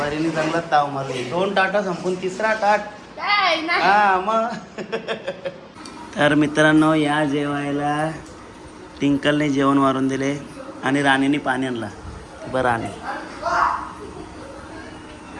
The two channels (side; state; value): both; identical; correlation 1.00